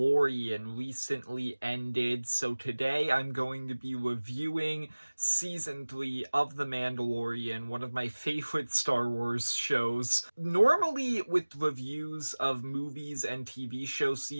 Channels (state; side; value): inverted; both; correlation -1.00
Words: recently ended, so today I'm going to be reviewing Season 3 of The Mandalorian, one of my favorite Star Wars shows. Normally, with reviews of movies and TV show